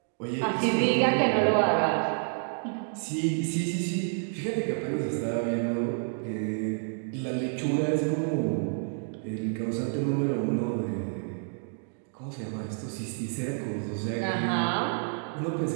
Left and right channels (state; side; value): silent; left; 59 dB below the other